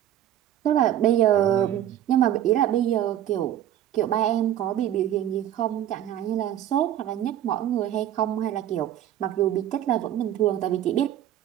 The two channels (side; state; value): left; quieter; 11.5 dB